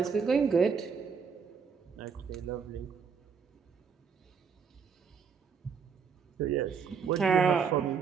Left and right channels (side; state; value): left; quieter; 6.1 dB